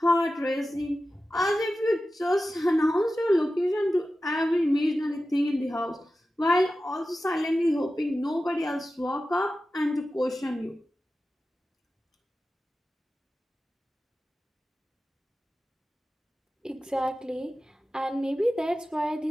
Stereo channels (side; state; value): both; normal; correlation 0.94